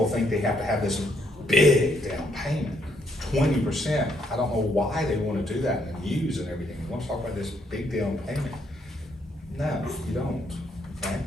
think they have to have this big down payment, 20%. I don't know why they want to do that in the news and everything. You want to talk about this big down payment? No, you don't. Okay?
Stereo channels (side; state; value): both; normal; correlation 0.72